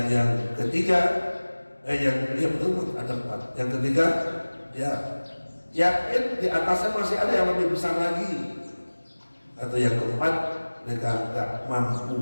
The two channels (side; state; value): both; inverted; correlation -1.00